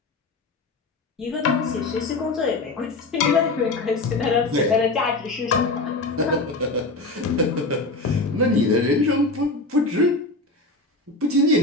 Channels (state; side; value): quieter; right; 3.1 dB